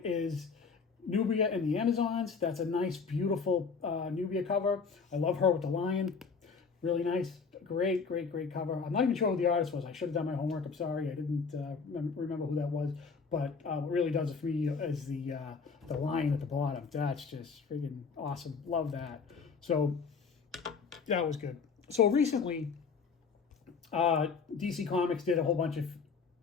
is Nubia and the Amazons. That's a nice, beautiful Nubia cover. I love her with the lion. Really nice. Great cover. I'm not even sure who the artist was. I should have done my homework. I'm sorry. I didn't remember who that was. But what really does it for me is the lion at the bottom. That's just freaking awesome. Love that. So that was good. So recently, DC Comics did a whole bunch of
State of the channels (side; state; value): right; quieter; 5.3 dB